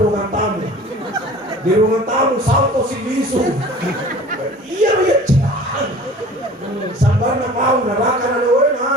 tamu. Di ruangan tamu salto si bisu. Iya cian. Sambar na pau neraka na doy na,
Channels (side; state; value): both; normal; correlation 0.44